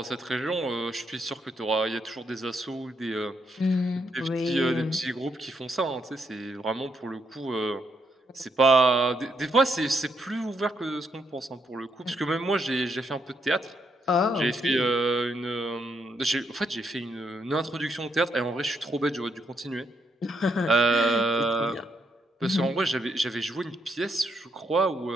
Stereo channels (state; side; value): normal; both; correlation 0.76